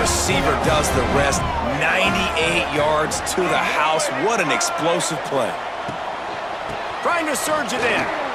does the rest. 98 yards to the house. What an explosive play. Trying to surge it in.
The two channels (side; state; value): both; identical; correlation 1.00